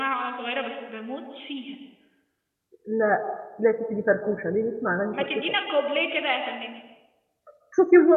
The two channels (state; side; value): identical; both; correlation 1.00